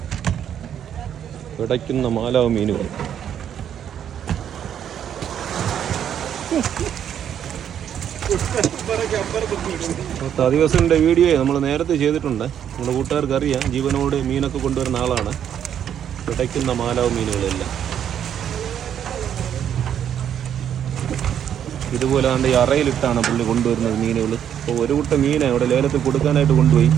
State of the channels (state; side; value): quieter; left; 9.4 dB